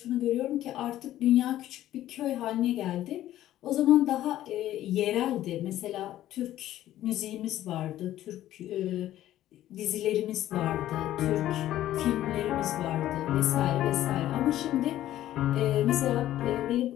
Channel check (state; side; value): quieter; right; 13.4 dB